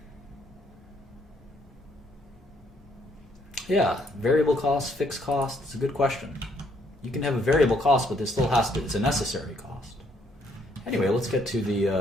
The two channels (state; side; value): normal; both; correlation 0.69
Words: Yeah, variable cost, fixed cost, it's a good question. You can have a variable cost, but there still has to, it's a necessary cost. Anyway, let's get to